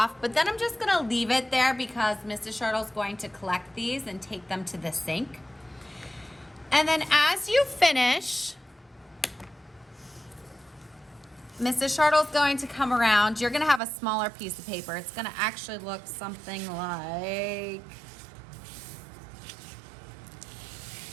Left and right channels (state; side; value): drops out; left; at 13.8 s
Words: but then I'm just gonna leave it there because Mrs. Shirtle's going to collect these and take them to the sink. And then as you finish, Mrs. Shirtle's going to come around. You're gonna have a smaller piece of paper. It's gonna actually look something like